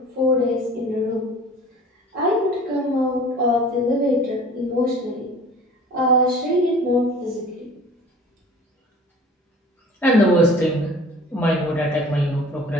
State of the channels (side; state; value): both; normal; correlation 0.45